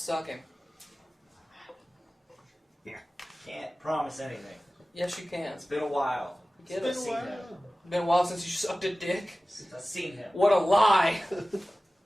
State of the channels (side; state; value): both; normal; correlation 0.97